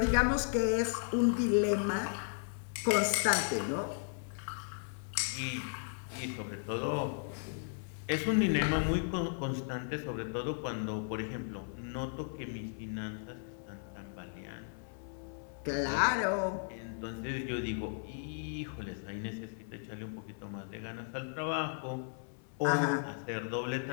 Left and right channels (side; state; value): right; silent; 54 dB below the other